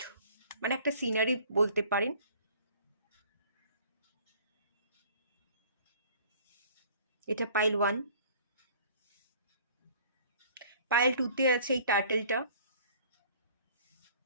মানে একটা সিনারি বলতে পারেন, এটা পাইল 1। পাইল 2-তে আছে এই টার্টেলটা,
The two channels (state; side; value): inverted; both; correlation -0.52